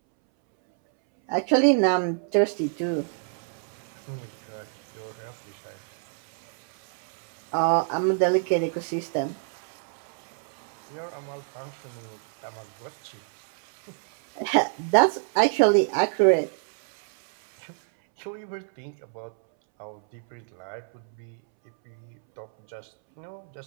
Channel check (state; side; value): silent; left; 60 dB below the other